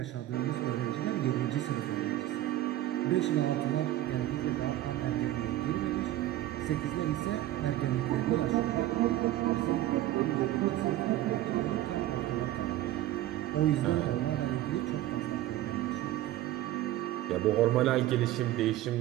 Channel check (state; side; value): quieter; left; 14.4 dB